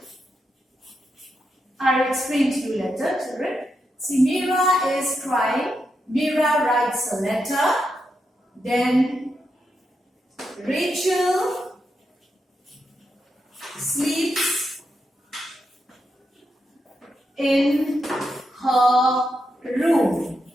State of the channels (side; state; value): both; normal; correlation 0.84